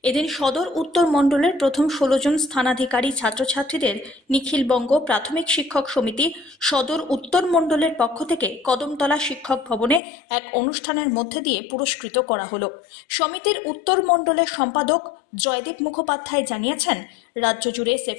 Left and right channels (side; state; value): right; drops out; at 10.0 s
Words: এদিন সদর উত্তর মণ্ডলের প্রথম 16 জন স্থানাধিকারী ছাত্রছাত্রীদের নিখিলবঙ্গ প্রাথমিক শিক্ষক সমিতি সদর উত্তর মণ্ডলের পক্ষ থেকে কদমতলা শিক্ষক ভবনে এক অনুষ্ঠানের মধ্যে দিয়ে পুরস্কৃত করা হলো। সমিতির উত্তর মণ্ডলের সম্পাদক জয়দীপ মুখোপাধ্যায় জানিয়েছেন, রাজ্য জুড়ে